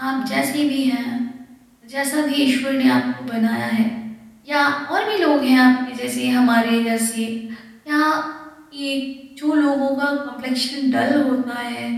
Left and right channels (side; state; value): both; identical; correlation 1.00